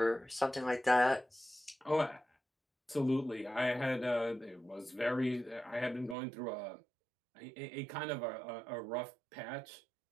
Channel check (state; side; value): drops out; left; at 6.2 s